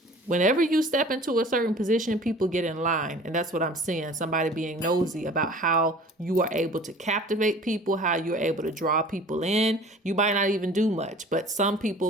Whenever you step into a certain position, people get in line. And that's what I'm seeing. Somebody being nosy about how you are able to captivate people, how you're able to draw people in. You might not even do much, but some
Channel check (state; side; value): normal; both; correlation 0.46